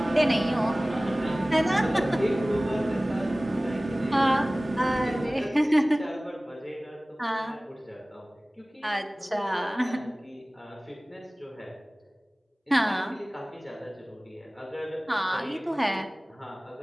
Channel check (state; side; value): normal; both; correlation 0.98